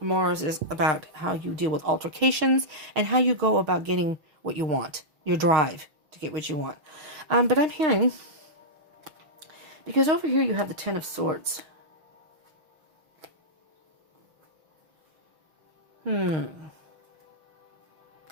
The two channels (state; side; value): late; left; 6.2 ms